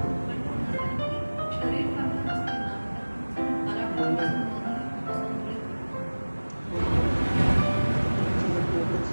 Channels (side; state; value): both; inverted; correlation -1.00